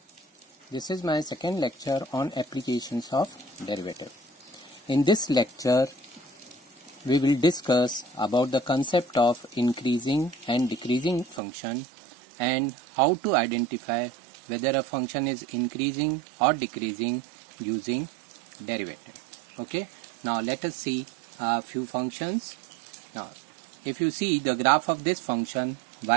This is my second lecture on applications of derivative. In this lecture we will discuss about the concept of increasing and decreasing function and how to identify whether a function is increasing or decreasing using derivative. Okay, now let us see a few functions. Now if you see the graph of this function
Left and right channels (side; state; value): left; drops out; at 11.4 s